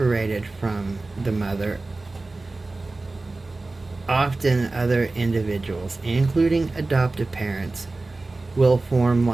from the mother, often other individuals, including adoptive parents, will form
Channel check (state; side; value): quieter; left; 3.3 dB